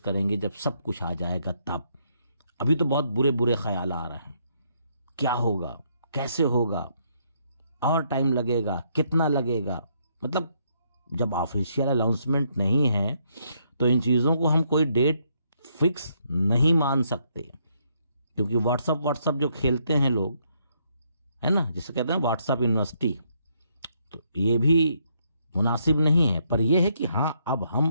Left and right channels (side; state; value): both; inverted; correlation -0.72